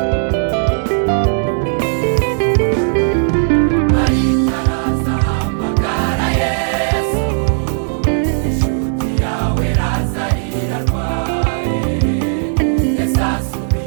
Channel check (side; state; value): left; silent; digital silence